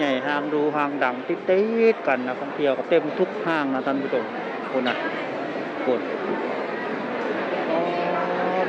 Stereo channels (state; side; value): identical; both; correlation 1.00